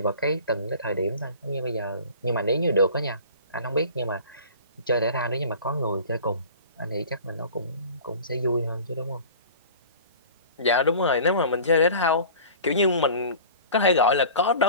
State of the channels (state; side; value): inverted; both; correlation -0.41